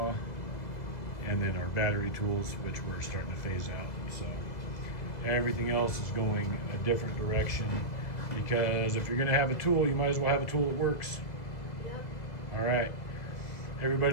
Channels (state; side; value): late; right; 2.0 ms